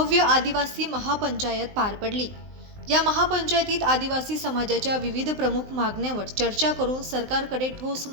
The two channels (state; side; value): late; left; 19 ms